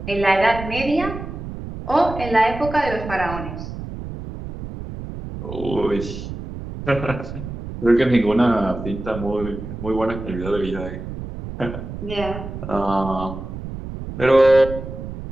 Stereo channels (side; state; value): right; noise; rumble, 9 dB below the sound